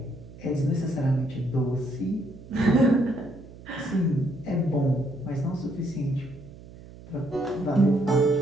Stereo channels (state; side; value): noise; right; hum, 18 dB below the sound